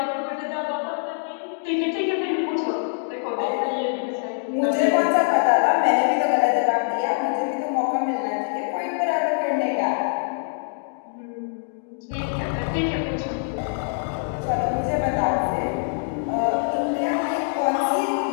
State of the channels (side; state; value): right; silent; digital silence